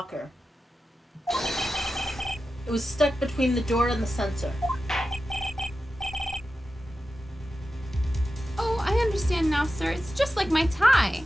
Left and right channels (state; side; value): normal; both; correlation 0.92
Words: It was stuck between the door and the sensor. Oh, I understand now, sir. It's just like my tie.